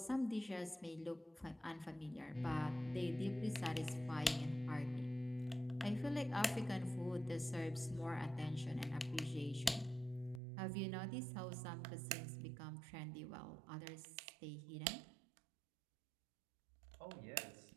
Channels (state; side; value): drops out; left; at 10.4 s